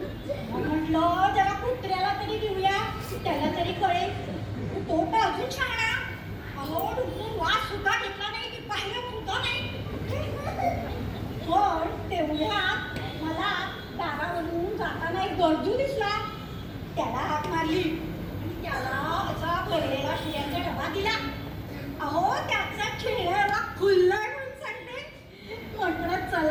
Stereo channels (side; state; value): both; identical; correlation 1.00